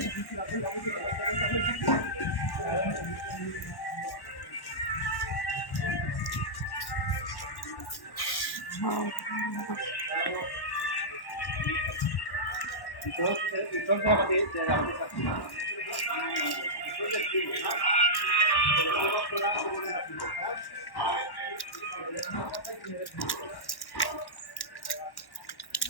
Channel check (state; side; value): late; right; 1.1 ms